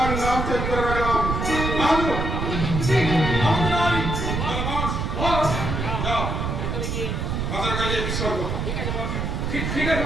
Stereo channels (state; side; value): noise; right; rumble, 2 dB below the sound